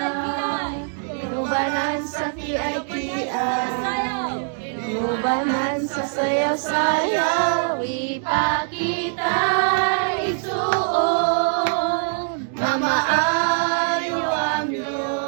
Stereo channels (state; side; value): silent; left; digital silence